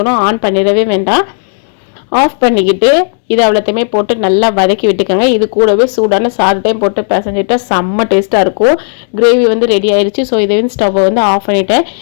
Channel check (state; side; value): silent; right; digital silence